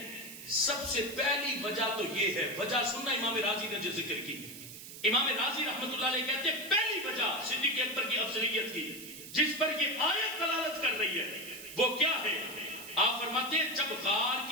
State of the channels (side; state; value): right; noise; hiss, 13 dB below the sound